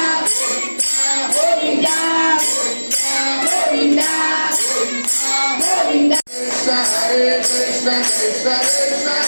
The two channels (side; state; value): both; inverted; correlation -1.00